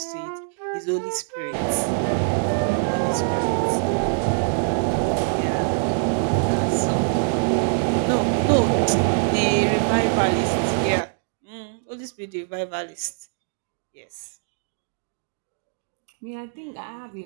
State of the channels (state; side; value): silent; left; digital silence